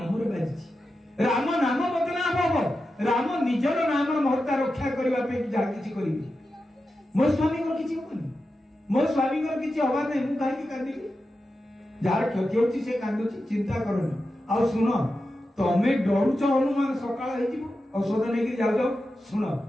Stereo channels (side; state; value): both; normal; correlation 0.91